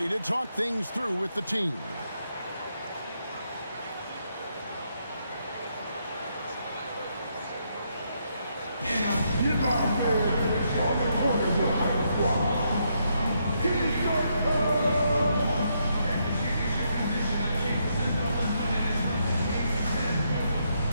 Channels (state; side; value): inverted; both; correlation -0.77